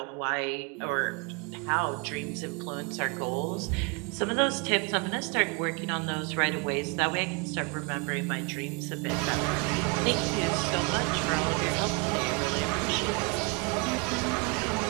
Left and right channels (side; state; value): left; quieter; 31.5 dB